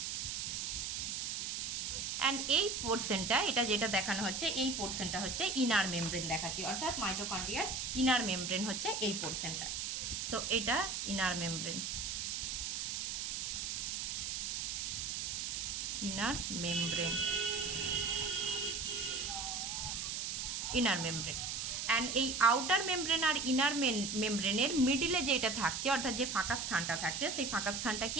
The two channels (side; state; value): right; noise; hiss, 2 dB below the sound